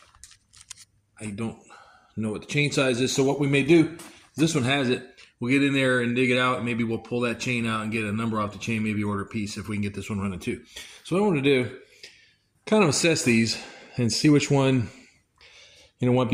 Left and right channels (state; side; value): identical; both; correlation 1.00